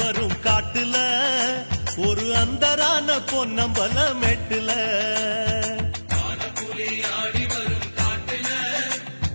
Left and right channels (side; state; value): both; inverted; correlation -1.00